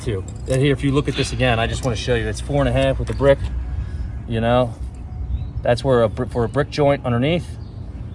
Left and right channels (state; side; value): identical; both; correlation 1.00